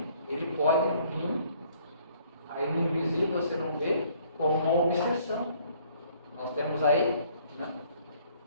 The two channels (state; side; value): inverted; both; correlation -0.61